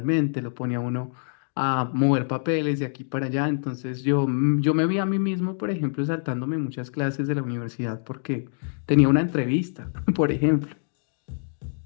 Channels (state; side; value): silent; right; digital silence